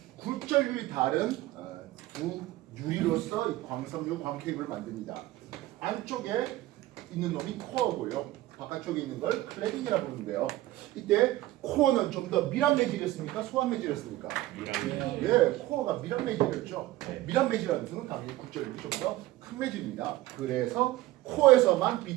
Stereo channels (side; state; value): left; quieter; 16.7 dB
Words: 굴절율이 다른 두 유리로서 이 광섬유 광케이블을 만듭니다. 안쪽에 있는 놈이 코어고요. 바깥쪽에 있는 걸 클래딩이라고 부르는데요. 이때 코어는 좀 더 밀한 매질이었습니까? 소한 매질이었습니까? 밀한. 예, 코어가 밀한 매질이었죠. 네. 밀한 매질이라는 것은 당연히 굴절율이 좀 더 큰 매질입니다. 그래서 코어에서만